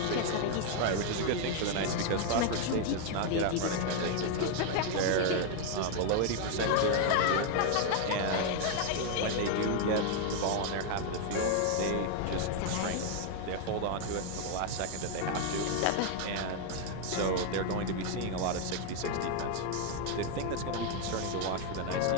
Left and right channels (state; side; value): different; both; correlation 0.00